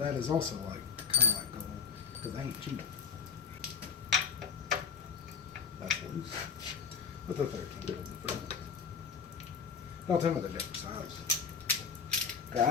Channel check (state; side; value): quieter; right; 6.3 dB